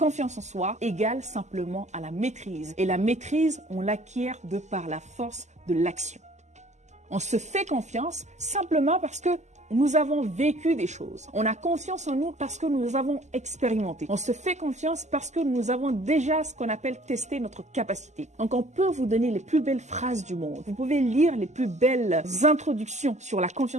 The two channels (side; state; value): left; late; 0.33 ms